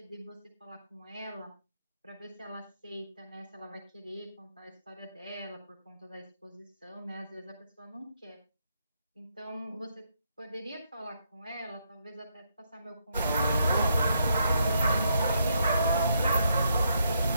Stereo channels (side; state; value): both; inverted; correlation -0.76